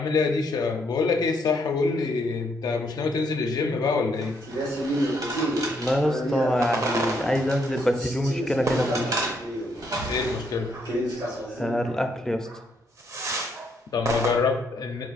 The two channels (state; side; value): normal; both; correlation 0.73